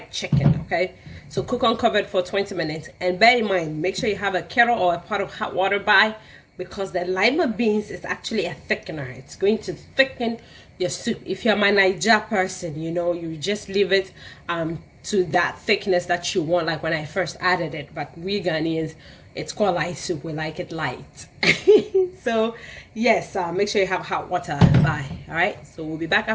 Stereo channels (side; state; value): both; identical; correlation 1.00